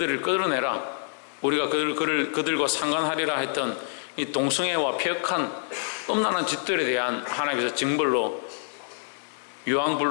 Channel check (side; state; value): right; silent; digital silence